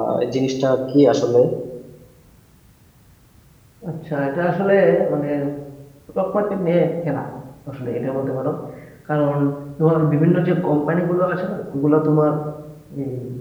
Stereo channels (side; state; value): both; identical; correlation 1.00